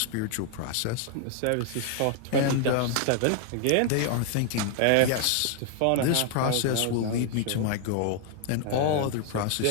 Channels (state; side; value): different; both; correlation 0.00